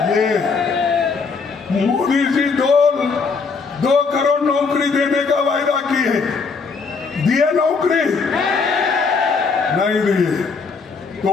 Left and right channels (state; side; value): quieter; right; 4.9 dB